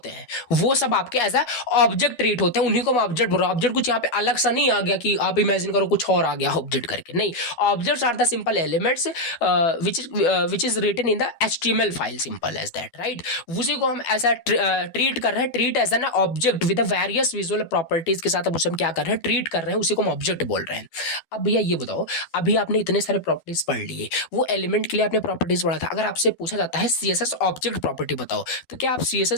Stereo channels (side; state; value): right; late; 12 ms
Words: हैं, वो सब आपके एज अ ऑब्जेक्ट ट्रीट होते हैं। उन्हीं को हम ऑब्जेक्ट बोल रहे हैं। ऑब्जेक्ट कुछ यहाँ पे अलग सा नहीं आ गया कि आप इमेजिन करो कुछ और आ गया ऑब्जेक्ट करके, नहीं। Objects are the simple elements which is written in the HTML file, simple as that, right. उसी को हम ऐसा ट्रीट कर रहे हैं, treat as an object with various visual properties के साथ हम उसे क्या कर रहे हैं, ट्रीट कर रहे हैं, उसी को हम ऑब्जेक्ट बोल रहे हैं। अब भैया ये बताओ, अभी आपने इतने सारे प्रॉपर्टीज पढ़ लिए, वो एलिमेंट के लिए आपने प्रॉपर्टीज पढ़ा था, अगर आपसे पूछा जाता है CSS ऑब्जेक्ट प्रॉपर्टी बताओ, तो क्या आप